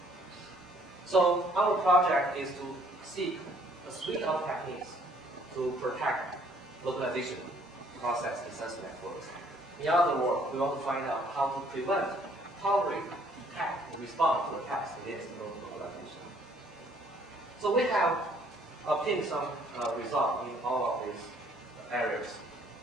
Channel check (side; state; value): both; normal; correlation 0.62